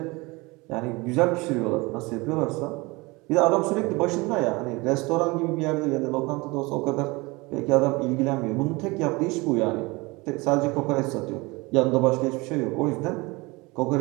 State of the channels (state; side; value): quieter; left; 24.3 dB